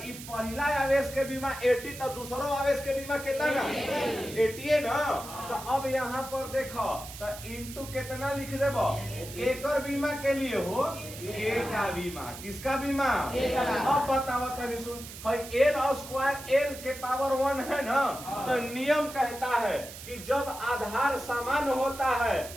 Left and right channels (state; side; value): noise; right; hiss, 13 dB below the sound